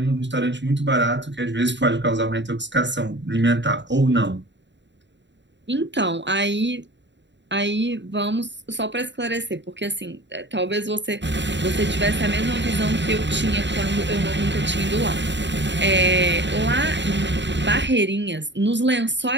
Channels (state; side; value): late; left; 0.52 ms